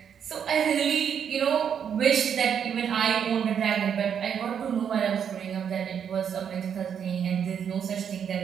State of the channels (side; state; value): left; quieter; 8.0 dB